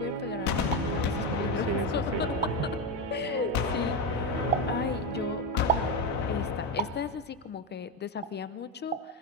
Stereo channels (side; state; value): both; normal; correlation 0.11